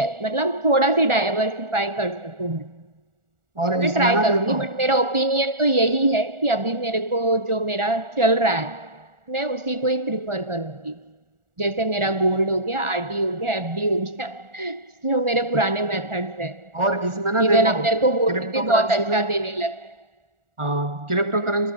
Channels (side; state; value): left; late; 1.4 ms